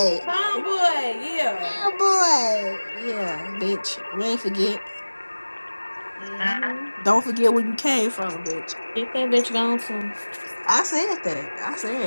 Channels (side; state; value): both; inverted; correlation -1.00